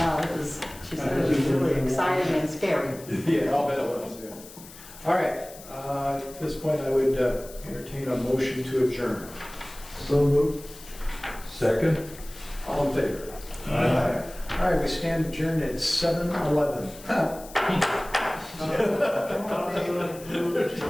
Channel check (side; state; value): left; noise; hiss, 18 dB below the sound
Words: it was, she said it was really exciting and scary. Yeah, I'll bet it was, yeah. All right, at this point, I would entertain a motion to adjourn. So moved. Second? All in favor? All right, we stand adjourned at 7:11.